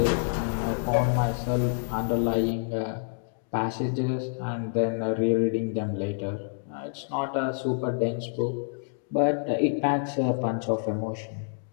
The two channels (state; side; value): silent; right; digital silence